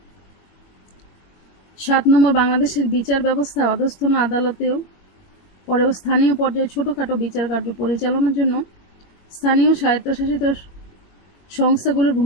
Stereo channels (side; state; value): right; late; 21 ms